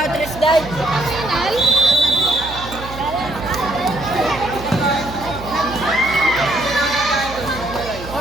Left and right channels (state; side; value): noise; right; hum, 12 dB below the sound